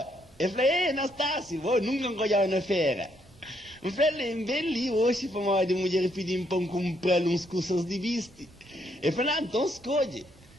Eu falei, Anastácio, vou nunca encolhar na feira. Eu falei, bem ali hoje para uma mulher pedindo para comprar uns cursos de viste. Eu falei, então escolhe.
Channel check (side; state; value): both; normal; correlation 0.74